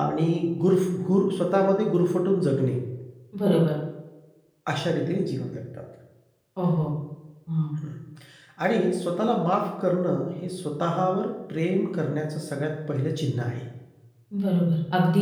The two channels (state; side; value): identical; both; correlation 1.00